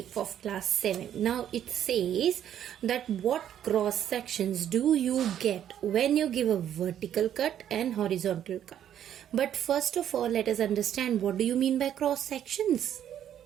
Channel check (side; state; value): left; quieter; 10.3 dB